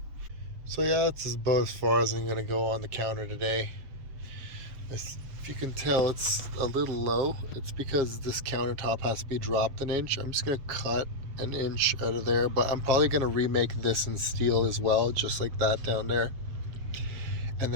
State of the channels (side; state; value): left; late; 7.5 ms